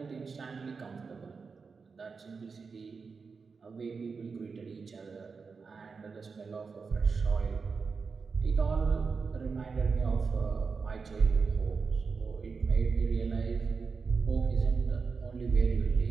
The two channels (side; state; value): left; quieter; 5.0 dB